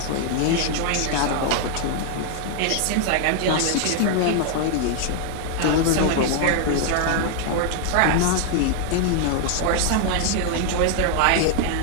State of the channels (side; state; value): both; different; correlation 0.00